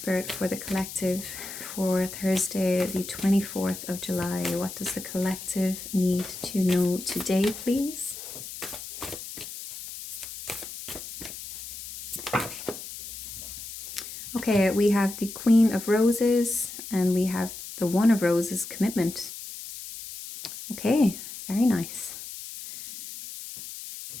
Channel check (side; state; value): left; noise; hiss, 11 dB below the sound